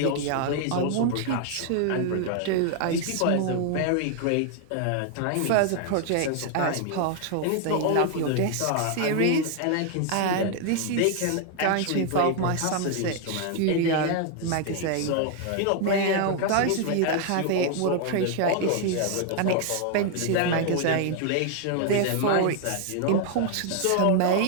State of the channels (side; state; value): both; different; correlation 0.00